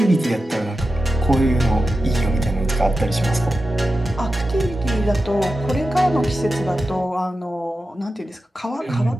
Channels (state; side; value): normal; both; correlation 0.92